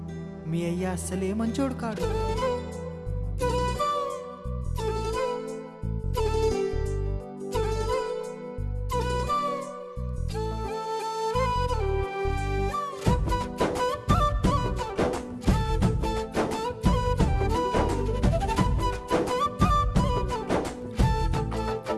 మీ అయ్య అస్సలే మంచోడు కాడు.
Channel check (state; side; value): identical; both; correlation 1.00